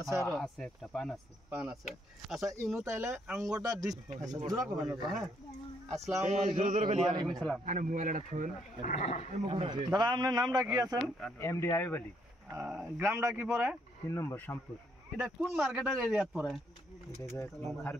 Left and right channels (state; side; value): normal; both; correlation 0.72